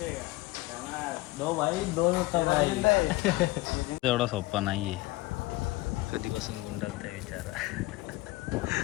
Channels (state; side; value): quieter; right; 19.9 dB